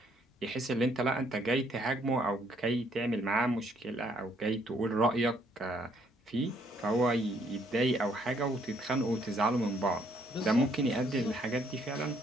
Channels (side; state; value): both; normal; correlation 0.68